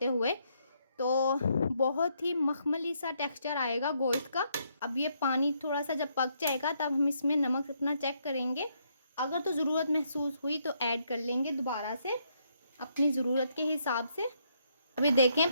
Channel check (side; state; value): both; inverted; correlation -0.74